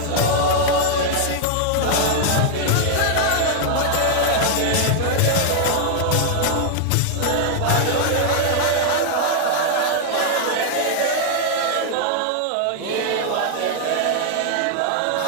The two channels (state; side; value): different; both; correlation -0.01